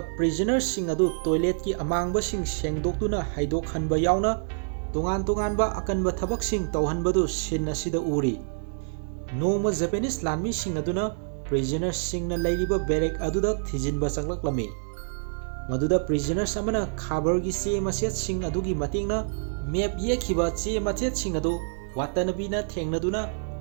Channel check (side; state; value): left; silent; digital silence